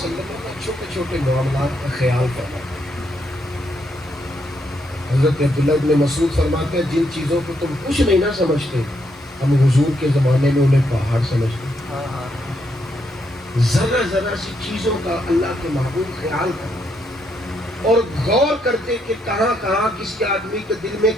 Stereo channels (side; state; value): both; normal; correlation 0.76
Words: نے چھوٹے چھوٹے معاملات کا خیال کرنا۔ حضرت عبداللہ ابن مسعود فرماتے ہیں جن چیزوں کو تم کچھ نہیں نہ سمجھتے، ہم حضور کے زمانے میں انہیں پہاڑ سمجھتے ہیں۔ ذرا ذرا سی چیزوں کا اللہ کے محبوب خیال کرنا اور غور کرتے کہ کہاں کہاں کس کے آدمی کے دل میں